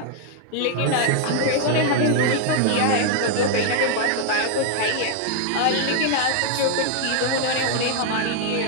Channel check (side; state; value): both; different; correlation 0.00